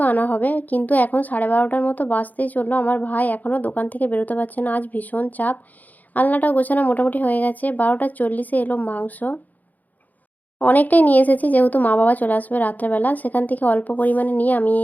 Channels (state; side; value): late; right; 0.081 ms